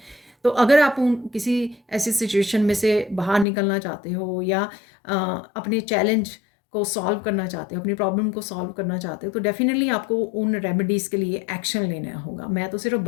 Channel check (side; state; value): right; drops out; at 3.5 s